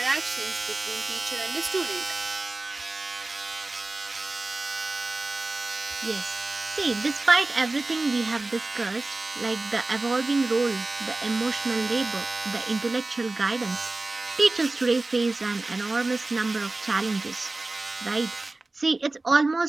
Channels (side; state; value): left; quieter; 3.1 dB